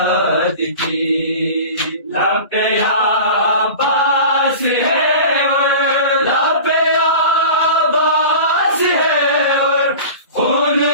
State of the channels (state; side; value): inverted; both; correlation -0.35